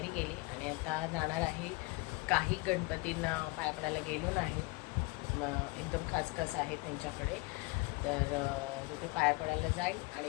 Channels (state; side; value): quieter; right; 24.7 dB